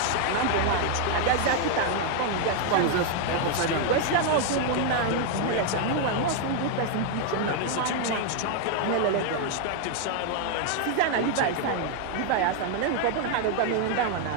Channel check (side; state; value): both; different; correlation 0.00